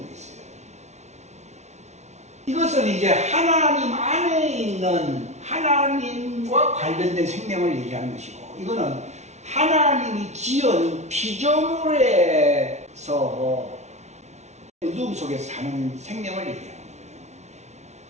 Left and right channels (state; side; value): late; left; 0.32 ms